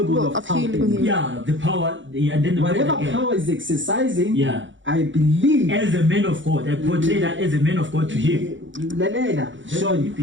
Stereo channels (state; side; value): late; left; 0.55 ms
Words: of healing helping. him. Yeah, the power. And then the Whatever word again. power is exercising, Yeah. I believe. As a man of God, I portray that as a man of God to him. Lalela, He Sean.